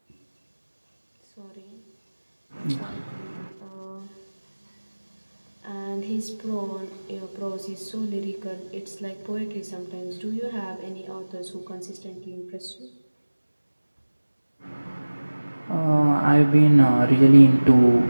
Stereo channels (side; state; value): both; inverted; correlation -1.00